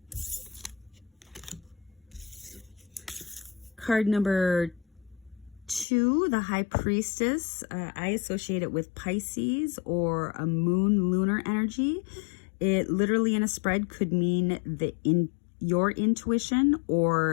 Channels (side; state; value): right; drops out; at 5.9 s